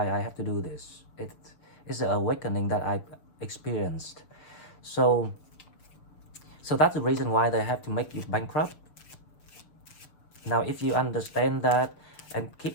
I have to do this. It's an awakening that I experienced. So that's the reason why they have to make you bankrupt. Now if you understand that and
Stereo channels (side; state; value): right; late; 6.8 ms